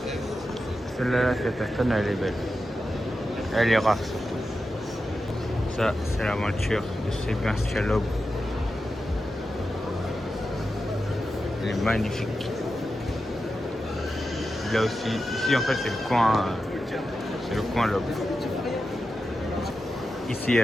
Celle-là, cette Aston, elle est belle. Elle est rare, surtout. Ça, c'est la voiture de Sébastien Loeb. Elle est magnifique. Là aussi, ici en fait c'est le coin Loeb. Ici il y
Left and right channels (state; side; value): normal; both; correlation 0.90